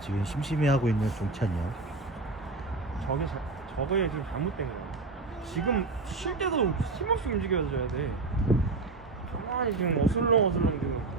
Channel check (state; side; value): quieter; left; 3.7 dB